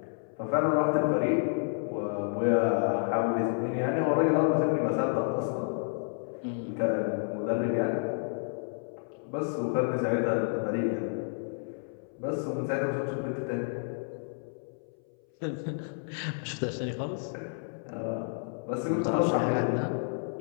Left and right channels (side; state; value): right; silent; 58 dB below the other